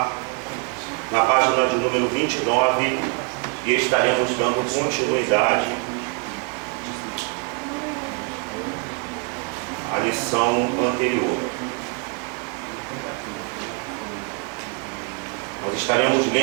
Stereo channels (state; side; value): quieter; left; 32.9 dB